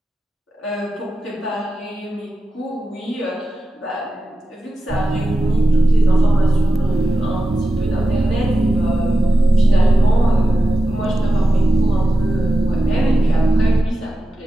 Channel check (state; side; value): normal; both; correlation 0.92